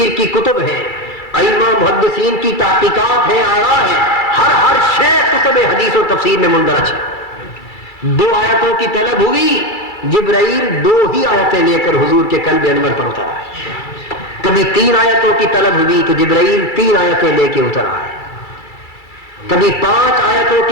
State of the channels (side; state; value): right; late; 2.3 ms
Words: کی کتب ہیں، ائمہ محدثین کی تحقیقات ہیں، آراء ہیں، ہر شے کتب حدیث و تفسیر میں مندرج ہے۔ 2 آیتوں کی طلب ہوئی، جبرائیل 2 ہی آیتیں لے کر حضور کے قلب انور پر اتر آئے۔ کبھی 3 آیتوں کی طلب ہوئی تو جبرائیل 3 آیتیں لے کے اتر آئے۔ کبھی 5 آیتوں